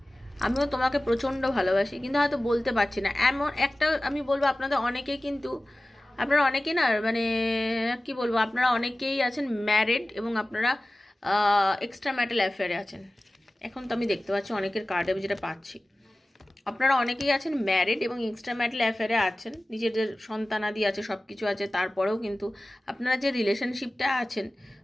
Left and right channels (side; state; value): both; normal; correlation 0.97